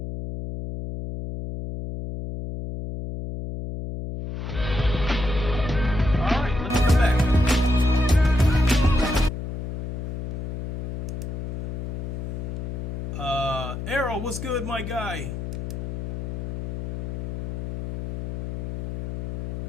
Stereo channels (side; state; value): left; noise; hum, 4 dB below the sound